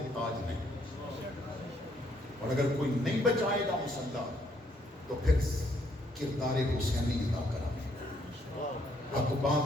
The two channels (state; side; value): normal; both; correlation 0.70